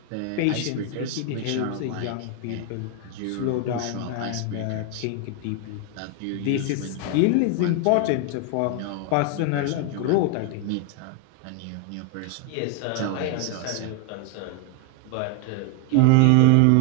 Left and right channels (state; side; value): different; both; correlation 0.00